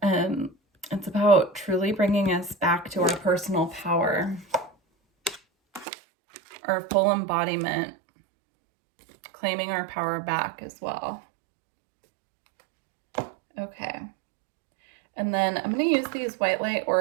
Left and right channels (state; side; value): drops out; left; at 5.9 s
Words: It's about truly bringing us back to our personal power, our full embodiment, claiming our power back as well. Okay. And then I'm going to use these white light